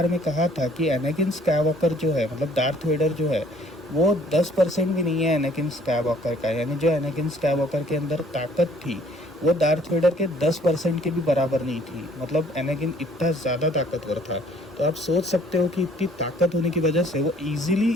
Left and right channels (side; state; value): both; normal; correlation 0.58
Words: में कहा था कि एनाकिन स्काईवॉकर जो है, मतलब डार्थ वेडर जो है, वो 10% भी नहीं है एनाकिन स्काईवॉकर का। यानी जो एनाकिन स्काईवॉकर के अंदर ताकत थी, वो डार्थ वेडर के 10% के भी बराबर नहीं थी। मतलब एनाकिन इतना ज़्यादा ताकतवर था। तो आप सोच सकते हो कि इतनी ताकत होने की वजह से वो ईजिली